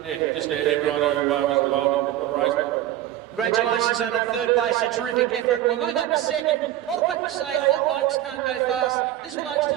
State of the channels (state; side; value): quieter; left; 13.1 dB